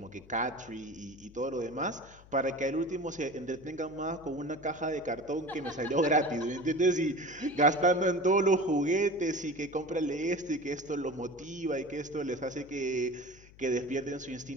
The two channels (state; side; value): noise; left; hum, 22 dB below the sound